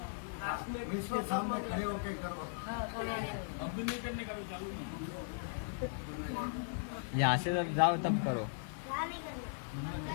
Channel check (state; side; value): silent; right; digital silence